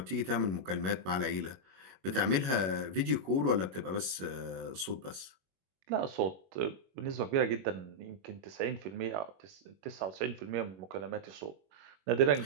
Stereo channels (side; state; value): left; late; 21 ms